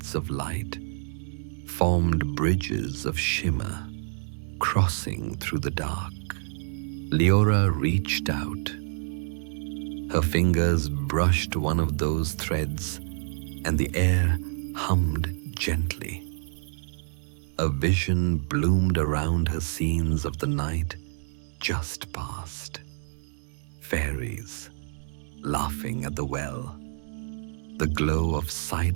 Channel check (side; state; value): left; silent; digital silence